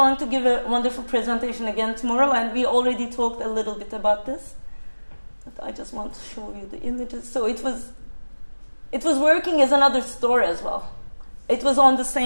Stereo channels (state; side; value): inverted; both; correlation -1.00